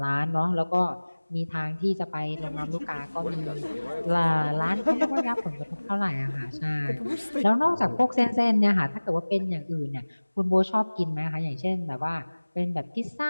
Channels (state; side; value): inverted; both; correlation -1.00